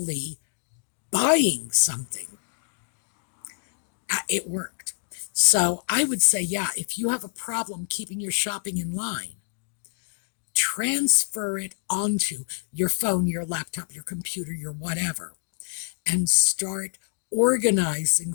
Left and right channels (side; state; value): right; silent; digital silence